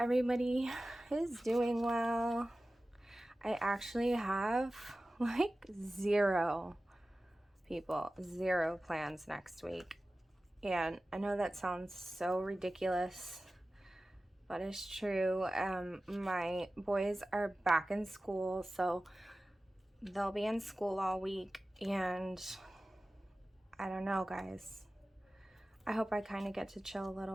is doing well. I actually have like zero plans next week, and I know that sounds so ridiculous, but it's true. My boys are back in school, so they'll be in school all week, and I don't know, guys. I hope I kind of get to chill a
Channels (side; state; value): both; normal; correlation 0.96